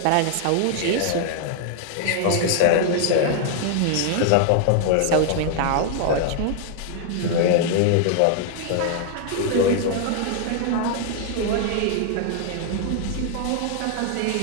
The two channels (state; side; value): different; both; correlation 0.00